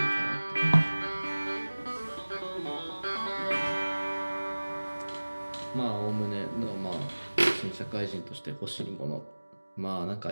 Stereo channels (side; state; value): both; inverted; correlation -1.00